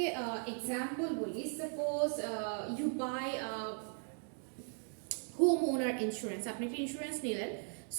example বলি, suppose you buy homeowner insurance. আপনি একটা insurance নিলেন,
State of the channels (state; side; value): silent; left; 52 dB below the other